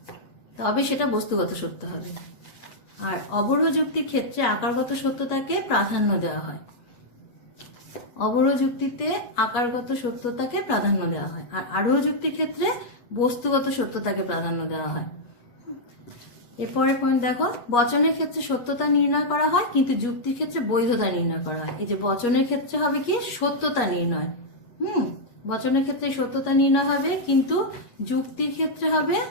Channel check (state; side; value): late; right; 8.3 ms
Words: তবে সেটা বস্তুগত সত্য হবে। আর অবরোহ যুক্তির ক্ষেত্রে আকারগত সত্যতাকে প্রাধান্য দেওয়া হয়। অবরোহ যুক্তিতে আকারগত সত্যতাকে প্রাধান্য দেওয়া হয়, আর আরোহ যুক্তির ক্ষেত্রে বস্তুগত সত্যতাকে প্রাধান্য দেওয়া হয়। এরপরের পয়েন্ট দেখো, বচনের ক্ষেত্রে সত্যতা নির্ণয় করা হয় কিন্তু যুক্তির ক্ষেত্রে বৈধতা নির্ণয় করা হয়। এই যে বচনের ক্ষেত্রে হবে কি সত্যতা নির্ণয়, বচনের ক্ষেত্রে সত্যতা নির্ণয় হবে কিন্তু যুক্তির ক্ষেত্রে হবে